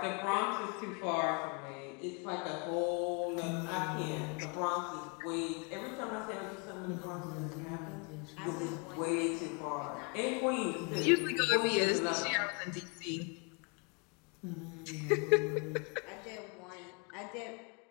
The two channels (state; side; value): quieter; right; 35.0 dB